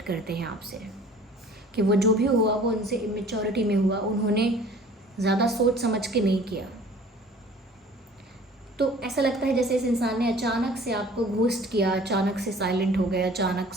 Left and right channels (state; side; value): normal; both; correlation 0.49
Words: करते हैं आपसे कि वो जो भी हुआ वो उनसे इमेच्योरिटी में हुआ, उन्होंने ज़्यादा सोच समझ के नहीं किया। तो ऐसा लगता है जैसे इस इंसान ने अचानक से आपको घोस्ट किया, अचानक से साइलेंट हो गया, अचानक